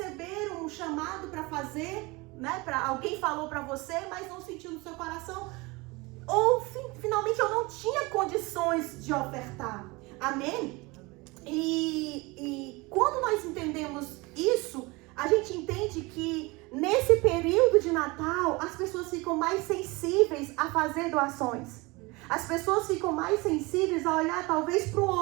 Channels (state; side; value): quieter; left; 24.3 dB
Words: um chamado para fazer, né? Alguém falou para você, mas não sentiu no seu coração. Ou finalmente eu não tinha condições de ofertar. Amém? E quando nós entendemos isso, a gente entende que nesse período de Natal as pessoas ficam mais sensíveis a fazer doações. As pessoas ficam mais sensíveis a olhar talvez para o